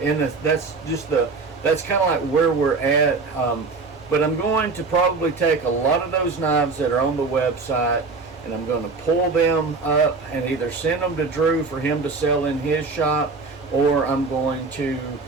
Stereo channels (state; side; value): quieter; left; 4.2 dB